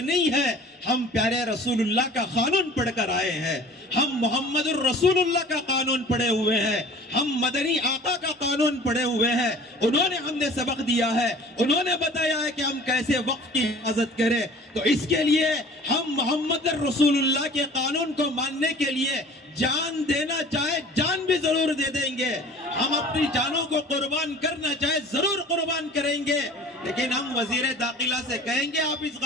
ہے. ہم پیارے رسول اللہ کا قانون پڑھ کر آئے ہیں. ہم محمد الرسول اللہ کا قانون پڑھے ہوئے ہیں. ہم مدنی آقا کا قانون پڑھے ہوئے ہیں. انہوں نے ہم نے سبق دیا ہے. انہوں نے بتایا ہے کہ ہم کیسے وقت کی حفاظت کریں. تو اس کے لیے ہم محمد الرسول اللہ کے قانون کو ماننے کے لیے جان دینا چاہے جان بھی ضرور دے دیں گے. ہم اپنی جانوں کو قربان کرنا چاہے ضرور قربان کریں گے. لیکن ہم وزیر داخلہ سے کہیں گے آپ اس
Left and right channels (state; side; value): normal; both; correlation 0.46